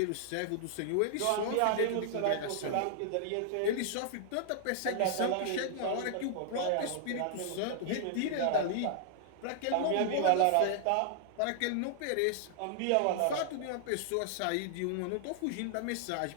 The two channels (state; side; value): different; both; correlation -0.01